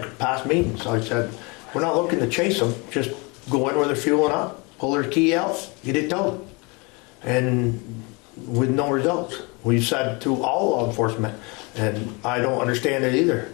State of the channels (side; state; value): right; quieter; 28.6 dB